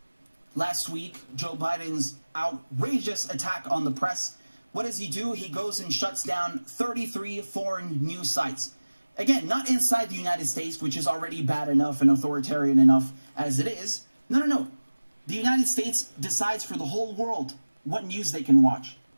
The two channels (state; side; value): inverted; both; correlation -1.00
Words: last week Joe Biden's outrageous attack on the press. What does he do? He goes and shuts down 33 foreign news sites. Again, not inside the United States, which is already bad enough and authoritarian enough as it is. No. The United States decides for the whole world what news they can watch,